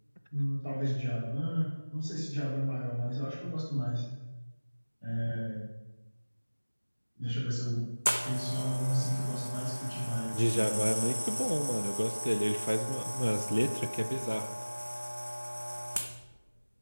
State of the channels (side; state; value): both; inverted; correlation -1.00